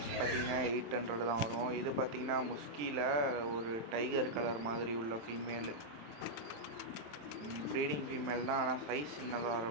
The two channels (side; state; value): left; late; 27 ms